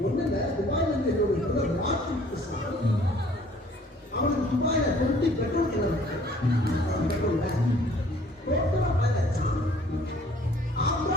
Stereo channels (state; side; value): normal; both; correlation 0.55